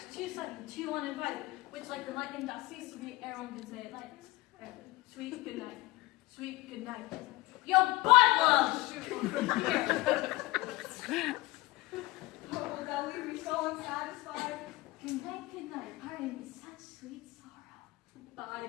too sudden, too uninvited, which like the lightning doth cease to be ere one can say it lightens. Sweet good night. Sweet good night. Yo, butt love! Here. Oh, will thou leave me so unsatisfied? Good night, pardon me, such sweet sorrow. Thy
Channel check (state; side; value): quieter; right; 20.0 dB